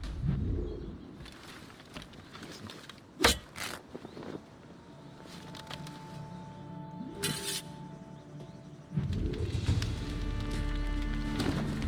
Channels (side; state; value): both; identical; correlation 1.00